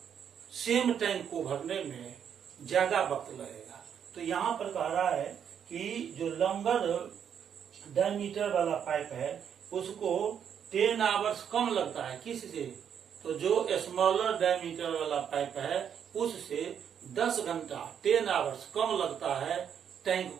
सेम टैंक को भरने में ज्यादा वक्त लगेगा। तो यहाँ पर कह रहा है कि जो लॉन्गर डायमीटर वाला पाइप है उसको 10 आवर्स कम लगता है। किससे? तो जो स्मॉलर डायमीटर वाला पाइप है उससे 10 घंटा 10 आवर्स कम लगता है टैंक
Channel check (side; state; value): left; quieter; 8.2 dB